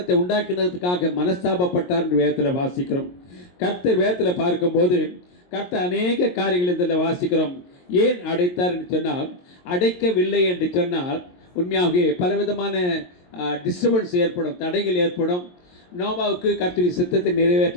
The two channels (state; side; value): late; right; 22 ms